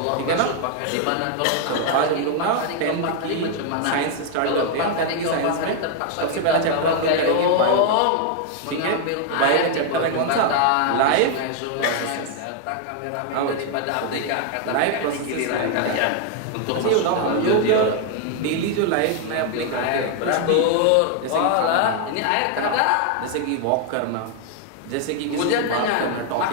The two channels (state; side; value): different; both; correlation 0.00